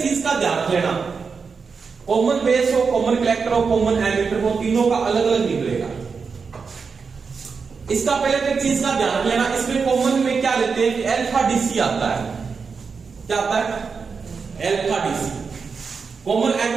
चीज का ध्यान रख लेना, कॉमन बेस हो, कॉमन कलेक्टर हो, कॉमन एमीटर हो, तीनों का अलग अलग निकलेगा। इसका पहले तो एक चीज का ध्यान रख लेना, इसमें कॉमन में क्या लेते हैं कि अल्फा डीसी आता है, क्या आता है, अल्फा डीसी। कॉमन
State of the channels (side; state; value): left; quieter; 5.3 dB